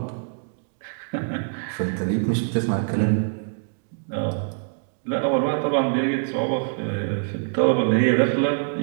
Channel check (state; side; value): silent; left; digital silence